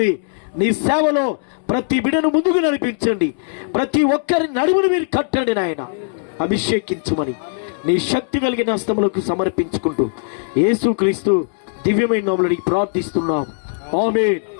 నీ సేవలో ప్రతి బిడను ముందుకు నడిపించండి. ప్రతి ఒక్కరి నడుమును మీరు కట్టండి నాయన. అభిషేకించుమని నీ శక్తి కలిగిన హస్తములకు సమర్పించుకుంటూ యేసుక్రీస్తు దివ్యమైన నామములో అడిగి ప్రార్థిస్తున్నాం. ఆమేన్.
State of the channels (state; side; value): silent; right; 66 dB below the other